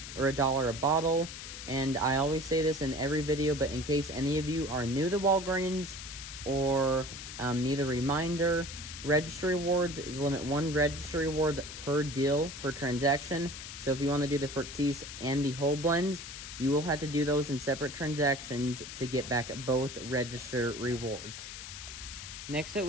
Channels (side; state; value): left; noise; hiss, 10 dB below the sound